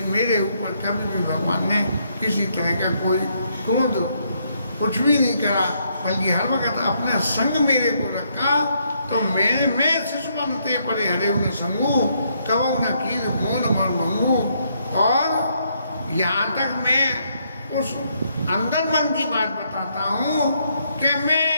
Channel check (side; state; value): both; inverted; correlation -0.74